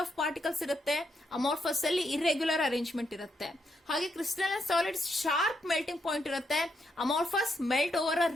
of particles ಇರುತ್ತೆ, ಅಮಾರ್ಫಸ್ ಅಲ್ಲಿ ಇರ್ರೆಗ್ಯುಲರ್ ಅರೇಂಜ್ಮೆಂಟ್ ಇರುತ್ತೆ. ಹಾಗೆ crystalline solids sharp melting point ಇರುತ್ತೆ, amorphous melt over a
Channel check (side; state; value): both; normal; correlation 0.79